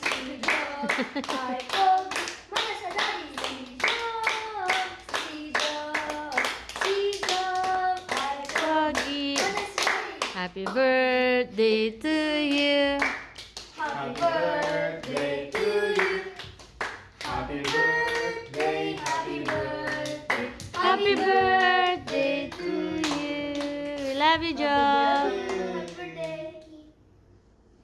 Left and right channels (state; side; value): identical; both; correlation 1.00